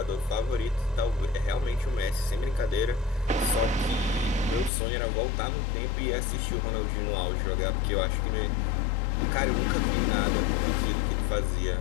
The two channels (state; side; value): drops out; right; at 4.7 s